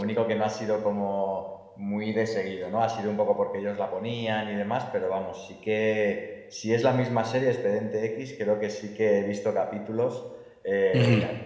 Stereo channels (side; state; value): both; identical; correlation 1.00